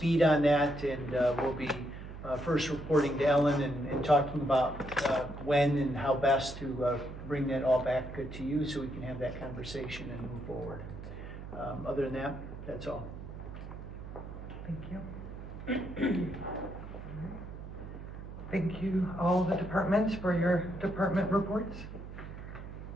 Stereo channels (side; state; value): right; noise; hum, 11 dB below the sound